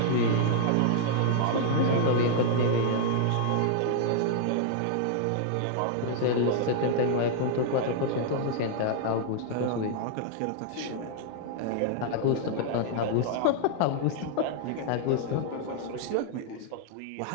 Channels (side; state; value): both; different; correlation -0.01